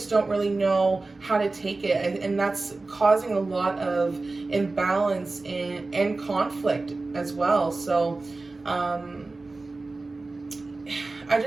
don't really know how to take it. And that's causing a lot of imbalance and conflict as well. So I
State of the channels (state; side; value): quieter; left; 3.4 dB